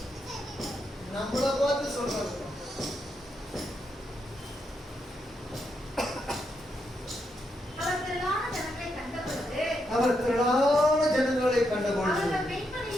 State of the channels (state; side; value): normal; both; correlation 0.81